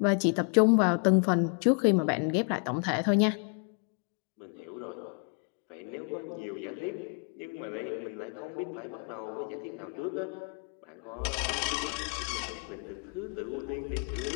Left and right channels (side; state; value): right; quieter; 39.5 dB